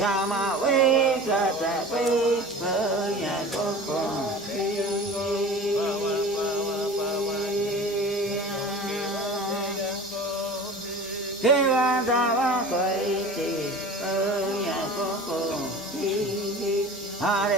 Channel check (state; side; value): normal; both; correlation 0.38